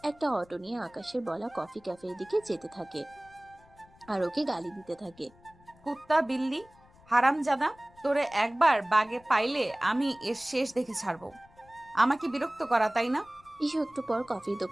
একটা অটো নিয়ে আকাশের বলা কফি ক্যাফের দিকে যেতে থাকে আর ওকে গালি দিতে থাকে। কুত্তা বিল্লি হারামজাদা, তোরে একবার বাগে পাইলে আমি এর শেষ দেখে ছাড়বো। আমাকে বিরক্ত করা তাই না? ইসু একটু পর কফির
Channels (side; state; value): left; noise; rumble, 27 dB below the sound